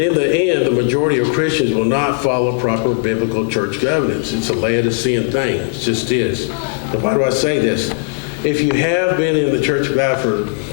the end, the majority of Christians will not follow proper biblical church governance. It's a Laodicean thing. It just is. And why do I say this? If you have been in the Church of God for,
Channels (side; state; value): right; silent; digital silence